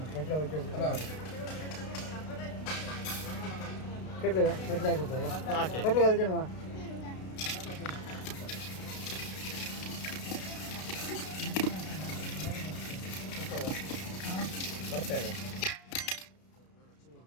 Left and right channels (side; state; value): right; late; 32 ms